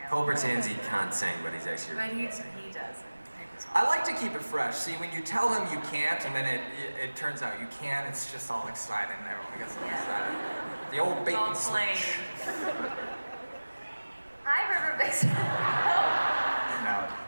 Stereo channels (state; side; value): inverted; both; correlation -1.00